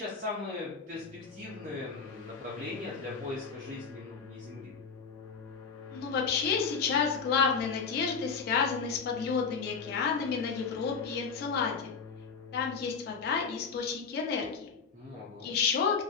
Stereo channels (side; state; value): right; quieter; 5.5 dB